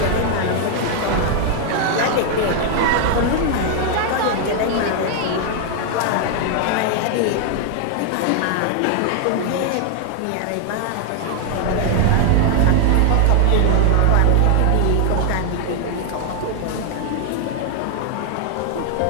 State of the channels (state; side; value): different; both; correlation 0.00